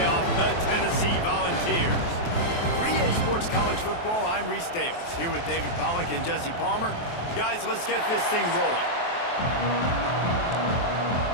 the Tennessee Volunteers. For EA Sports College Football, I'm Reese Davis, here with David Pollack and Jesse Palmer. Guys, let's get this thing rolling.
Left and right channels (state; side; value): late; right; 23 ms